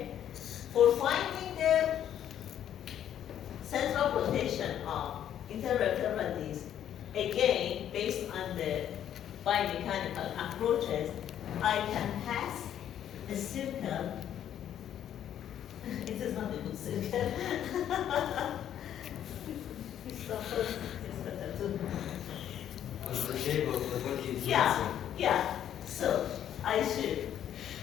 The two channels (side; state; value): right; quieter; 10.4 dB